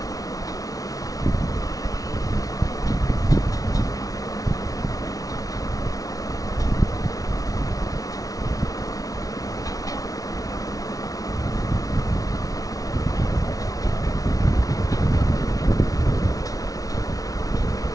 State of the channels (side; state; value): right; late; 0.18 ms